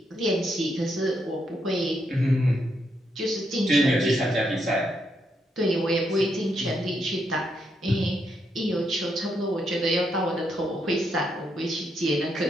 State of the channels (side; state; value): both; normal; correlation 0.78